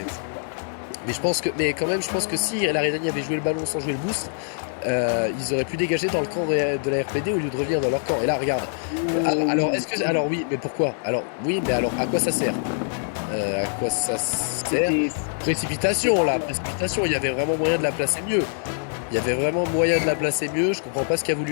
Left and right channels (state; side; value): silent; right; digital silence